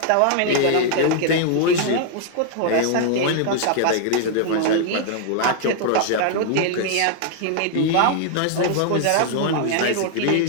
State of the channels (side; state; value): both; different; correlation 0.00